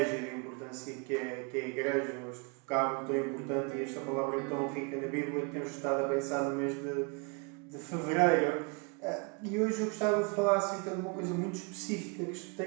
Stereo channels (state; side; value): quieter; left; 31.7 dB